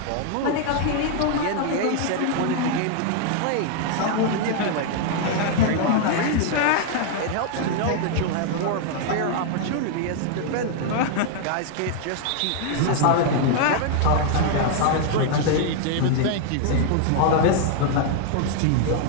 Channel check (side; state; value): both; different; correlation 0.00